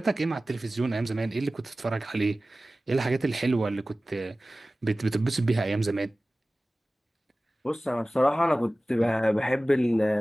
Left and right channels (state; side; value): normal; both; correlation 0.97